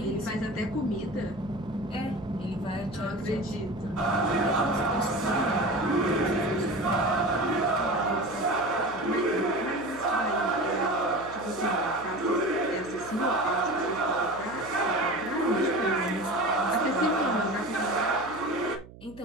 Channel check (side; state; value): right; noise; hum, 19 dB below the sound